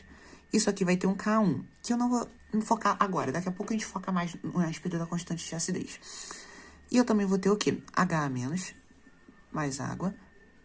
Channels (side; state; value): both; identical; correlation 1.00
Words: Isso aqui vai ter um K1, que eu não vou focar agora. Daqui a pouco a gente foca mais a respeito da constante de acidez. E eu também vou ter o quê? HA menos mais água,